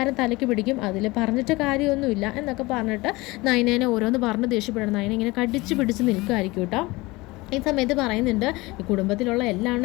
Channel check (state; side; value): quieter; right; 22.1 dB